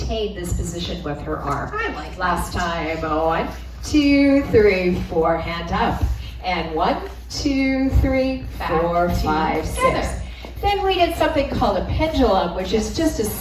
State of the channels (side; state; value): both; identical; correlation 1.00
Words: this position with her arm. I like Last time. 1, 2, 3, 4. Hand up. And 1, 2, 3, 4, 5, 6. Then we did something called a pendulum, which is just a